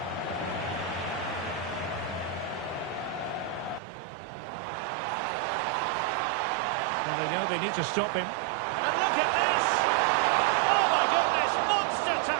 And they know they need to stop him. And look at this! Oh my goodness, monster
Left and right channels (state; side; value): drops out; left; at 3.8 s